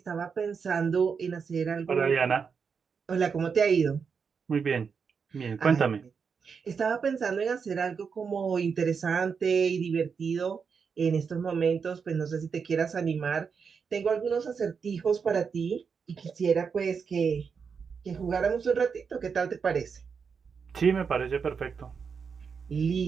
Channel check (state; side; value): quieter; left; 6.0 dB